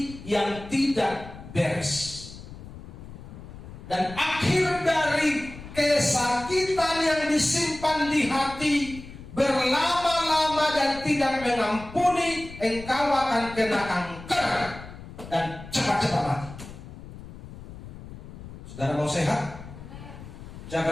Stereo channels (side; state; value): left; noise; rumble, 14 dB below the sound